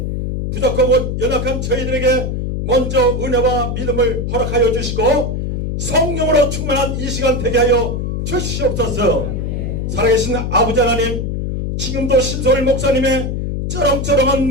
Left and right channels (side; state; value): left; noise; hum, 2 dB below the sound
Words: 부족하고 연약한 저희들에게 먼저 은혜와 믿음을 허락하여 주시고 성령으로 충만한 이 시간 되게 하여 주시옵소서. 살아계신 아버지 하나님, 지금도 신석월 목사님의 쩌렁쩌렁한